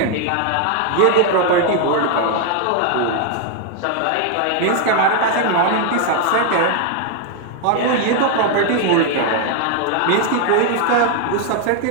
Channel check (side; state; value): both; different; correlation 0.00